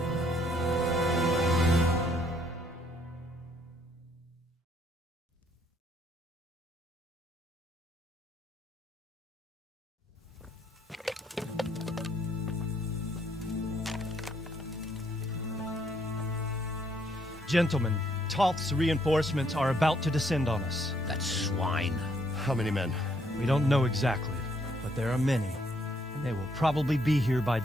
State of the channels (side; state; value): both; normal; correlation 0.70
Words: Gentlemen, Toth's reinforcements are about to descend on us. That swine. How many men? We don't know exactly, but there are many, and they will probably be here by